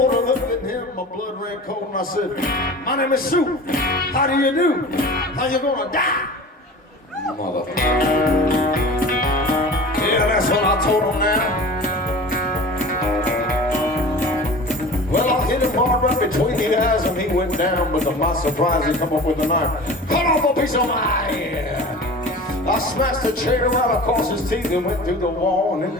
I looked at him, my blood ran cold, and I said, "My name is Sue. How do you do? How you gonna die?" Motherfucker. Yeah, that's what I told him now. Well, I hit him hard right between the eyes and he went down, but to my surprise he come up with a knife. Cut off a piece of my ear. I smashed the chair right across his teeth and went through the wall and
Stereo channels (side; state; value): both; normal; correlation 0.38